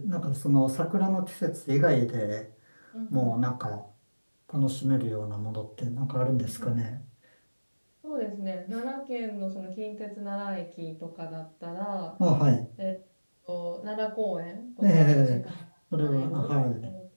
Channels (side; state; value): both; inverted; correlation -1.00